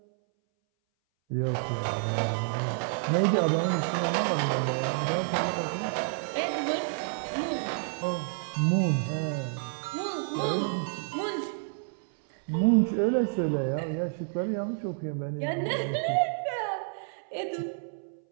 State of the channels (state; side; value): silent; left; 58 dB below the other